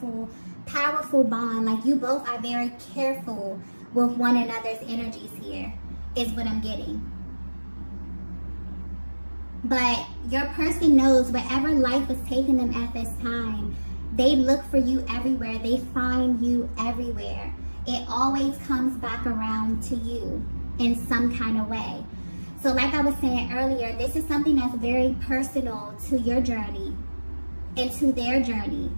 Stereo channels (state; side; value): inverted; both; correlation -1.00